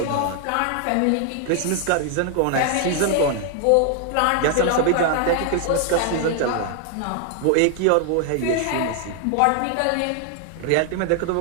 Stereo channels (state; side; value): different; both; correlation 0.00